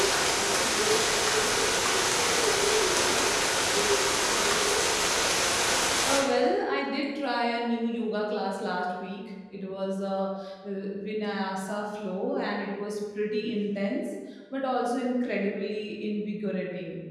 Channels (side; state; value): both; identical; correlation 1.00